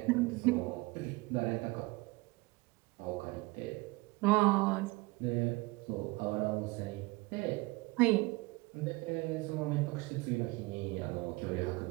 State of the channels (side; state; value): left; quieter; 23.6 dB